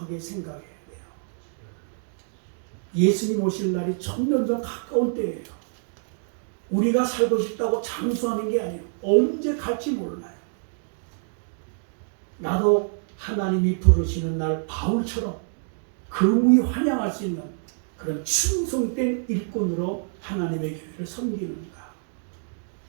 생각해야 돼요. 예수님 오실 날이 점점 가까운 때예요. 우리가 살고 싶다고 장수하는 게 아니에요. 언제 갈지 몰라요. 나도 하나님이 부르시는 날 바울처럼 금이 환영할 수 있는 그런 충성된 일꾼으로 하나님의 교회를 섬기는가.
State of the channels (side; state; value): left; silent; digital silence